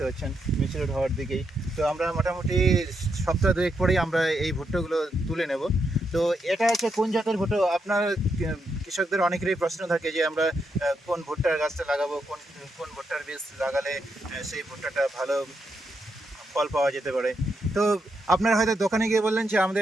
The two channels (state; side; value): normal; both; correlation 0.82